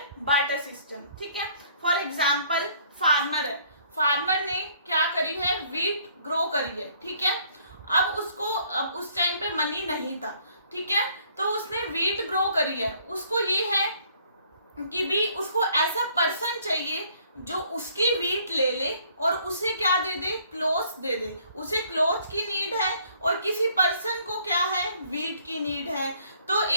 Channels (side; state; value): both; inverted; correlation -0.62